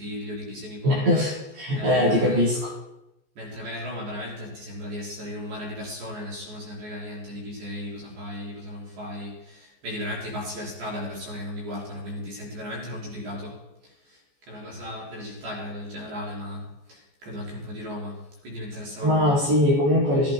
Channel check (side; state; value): left; late; 14 ms